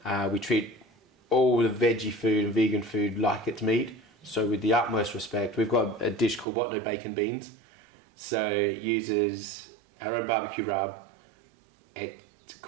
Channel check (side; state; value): left; drops out; at 6.5 s